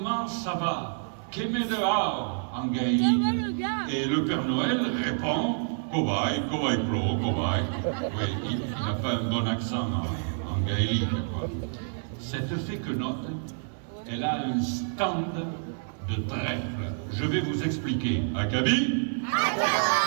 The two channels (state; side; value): silent; left; digital silence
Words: ça va? Qu'aimez dehors en gaélique? Et le Père Noël répond, cobaye, cobaye plo, cobaye. Oui, il n'a pas un bon accent en gaélique, quoi. Cette fée Quenotte, elle a un stand de trèfle. Je vais vous expliquer. Acabit?